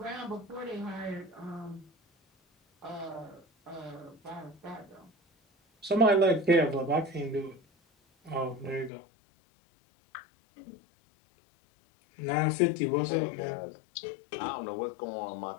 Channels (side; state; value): right; drops out; at 8.9 s